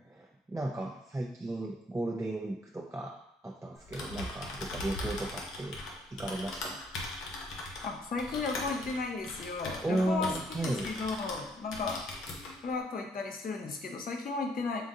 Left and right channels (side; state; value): both; normal; correlation 0.67